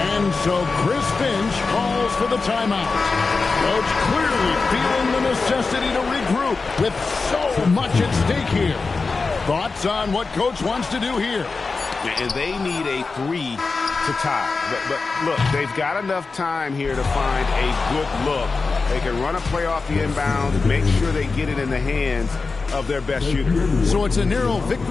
so Chris Finch calls for the timeout. Coach clearly feeling the necessity to regroup with so much at stake here. Thoughts on what Coach wants to do here? And they need a 3 to tie. But look, they've got enough time here to find a good look. They can run a play off the inbound, make sure they get it in the hands of their best shooter. So it's a narrow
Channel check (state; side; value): quieter; right; 4.2 dB